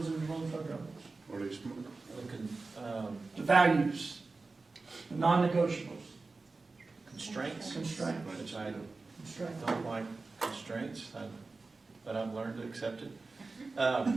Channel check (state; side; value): quieter; left; 3.7 dB